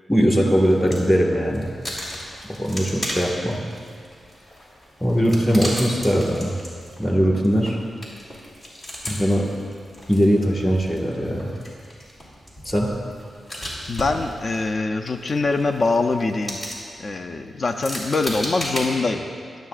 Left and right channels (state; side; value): normal; both; correlation 0.93